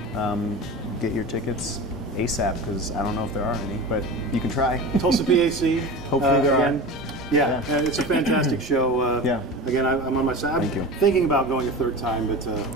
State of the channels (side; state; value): both; normal; correlation 0.31